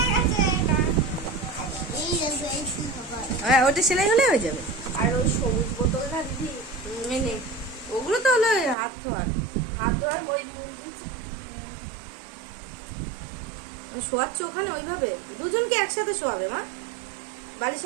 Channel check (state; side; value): drops out; left; at 8.8 s